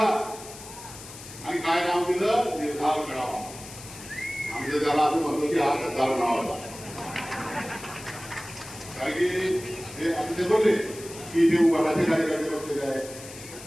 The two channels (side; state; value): left; noise; hiss, 15 dB below the sound